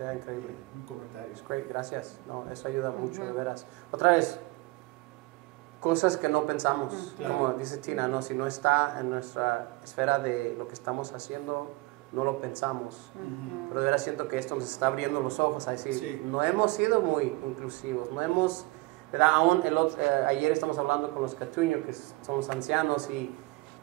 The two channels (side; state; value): left; quieter; 22.5 dB